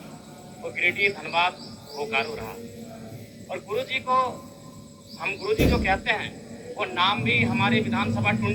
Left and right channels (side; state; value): both; identical; correlation 1.00